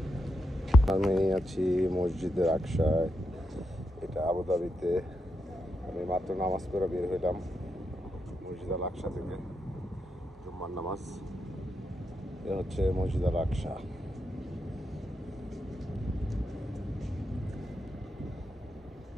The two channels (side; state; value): both; normal; correlation 0.84